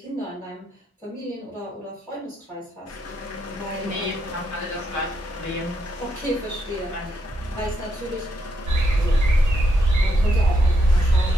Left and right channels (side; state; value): both; normal; correlation 0.78